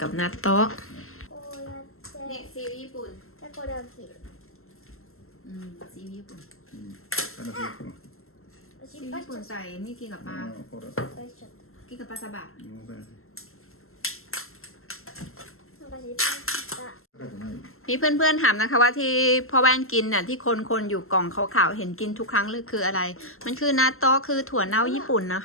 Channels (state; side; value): late; right; 0.62 ms